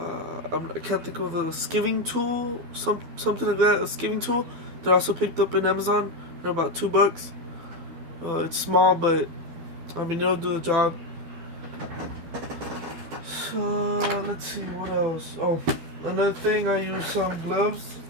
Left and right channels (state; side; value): late; left; 12 ms